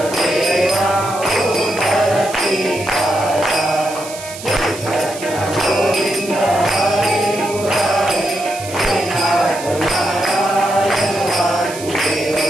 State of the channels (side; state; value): right; noise; hiss, 13 dB below the sound